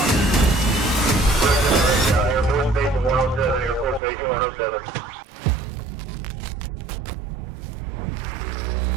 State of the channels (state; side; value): drops out; left; at 4.0 s